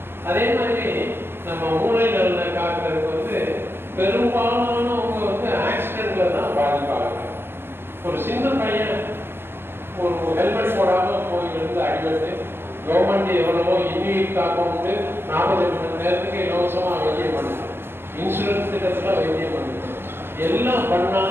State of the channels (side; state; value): left; late; 0.11 ms